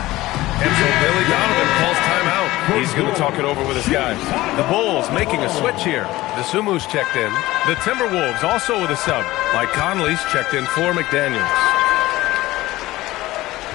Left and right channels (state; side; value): quieter; right; 17.7 dB